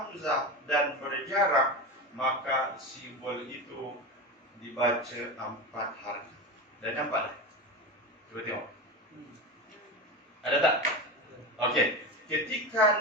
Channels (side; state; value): both; normal; correlation 0.22